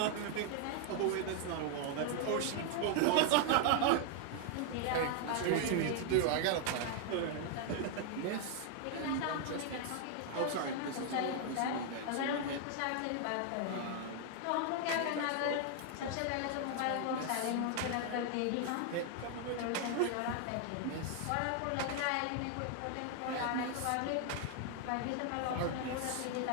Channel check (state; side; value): different; both; correlation 0.00